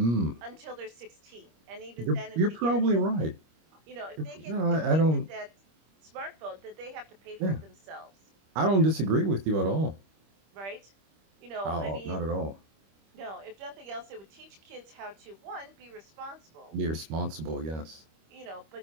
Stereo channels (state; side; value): late; left; 25 ms